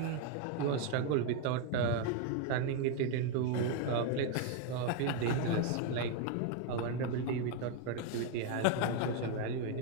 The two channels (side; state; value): both; different; correlation 0.01